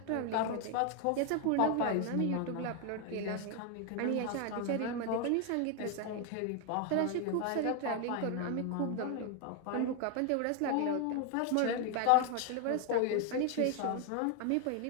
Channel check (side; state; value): both; different; correlation 0.01